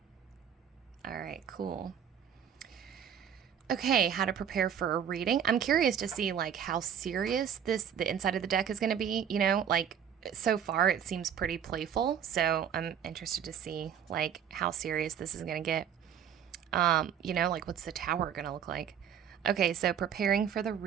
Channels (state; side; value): quieter; left; 8.7 dB